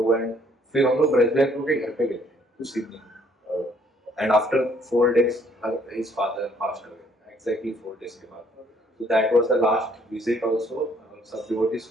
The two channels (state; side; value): normal; both; correlation 0.64